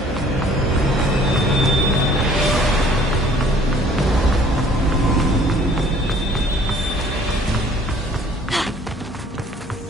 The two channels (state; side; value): normal; both; correlation 0.56